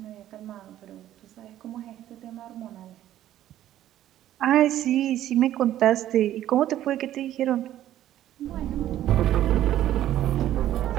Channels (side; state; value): left; quieter; 12.6 dB